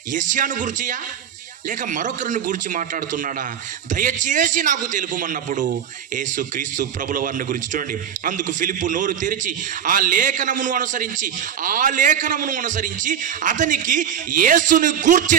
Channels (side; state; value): left; quieter; 8.9 dB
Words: యెషయాను గుర్చియా లేక మరొకరిని గురించి మాట్లాడుతున్నాడా? దయచేసి నాకు తెలుపమన్నప్పుడు యేసు క్రీస్తు ప్రభుల వారిని గురించి చూడండి. అందుకు ఫిలిప్పు నోరు తెరిచి ఆ లేఖనమును అనుసరించి అతనికి యేసుని